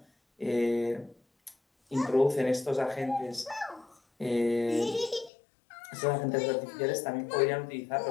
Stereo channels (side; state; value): right; drops out; at 5.3 s